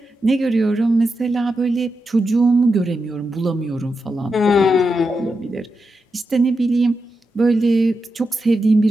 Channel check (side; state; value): both; normal; correlation 0.88